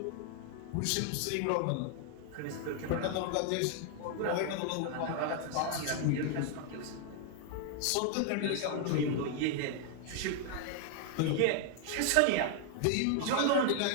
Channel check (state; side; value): different; both; correlation 0.00